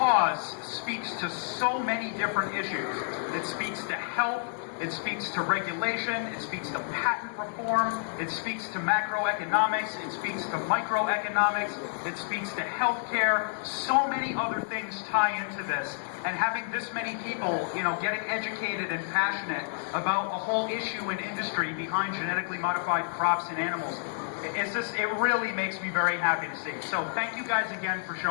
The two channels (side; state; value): right; silent; digital silence